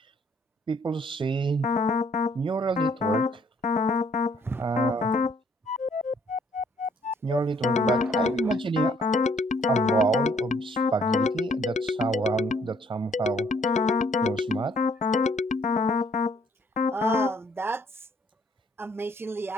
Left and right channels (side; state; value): both; normal; correlation 0.65